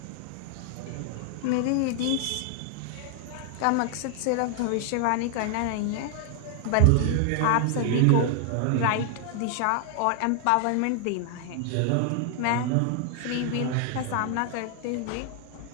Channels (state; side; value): different; both; correlation 0.00